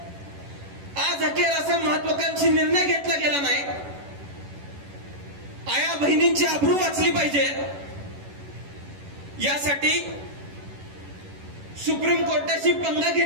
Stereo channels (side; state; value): left; late; 11 ms